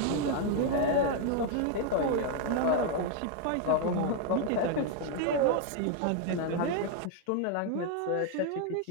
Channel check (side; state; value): both; different; correlation 0.00